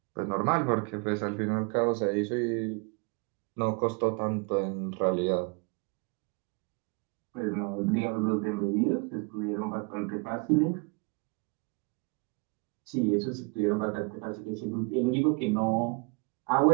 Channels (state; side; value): quieter; left; 32.3 dB